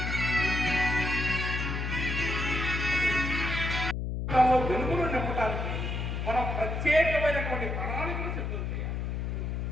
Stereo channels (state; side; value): noise; left; hum, 2 dB below the sound